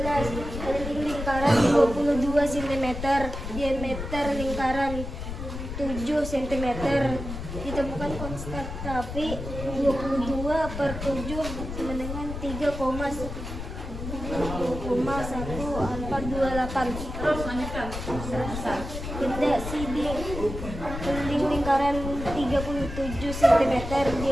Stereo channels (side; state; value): left; noise; rumble, 7 dB below the sound